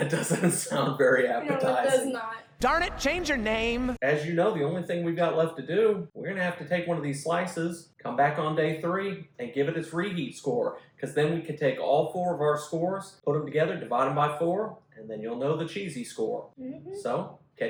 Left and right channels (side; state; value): both; identical; correlation 1.00